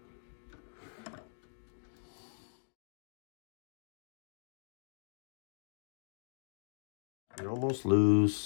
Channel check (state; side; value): silent; right; digital silence